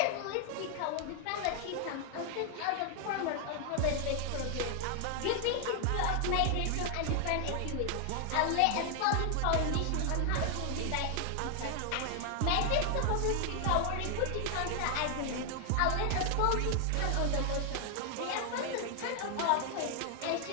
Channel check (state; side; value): different; both; correlation 0.00